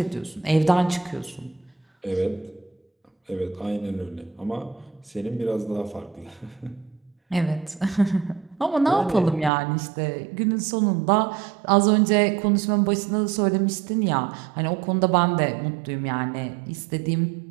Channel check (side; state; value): left; drops out; at 9.5 s